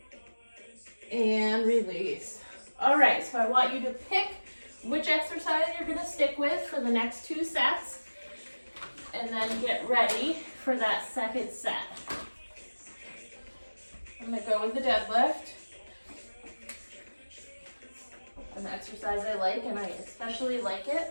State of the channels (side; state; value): both; inverted; correlation -1.00